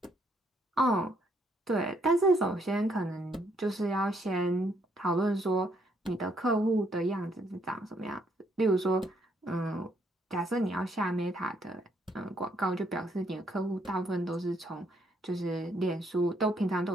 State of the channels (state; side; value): normal; both; correlation 0.71